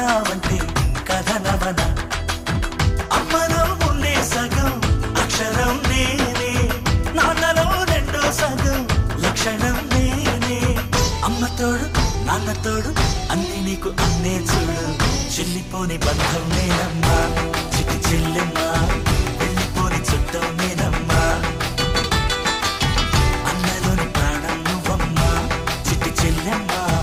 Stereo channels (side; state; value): both; identical; correlation 1.00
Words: కథనవన అమ్మలో ఉండే సగం అక్షరం నేనే నాన్నలో రెండో సగం లక్షణం నేనే అమ్మ తోడు నాన్న తోడు అన్ని నీకు అన్నే చూడు చెల్లిపోని బంధం నేనమ్మా చిటి చెల్లెమ్మా వెళ్ళిపోని చుట్టం నేనమ్మా అన్నలోని ప్రాణం నువ్వమ్మా చిటి చెల్లెమ్మా